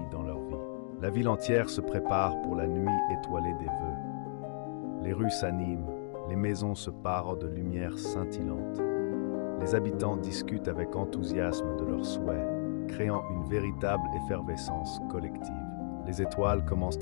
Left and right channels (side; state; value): right; silent; digital silence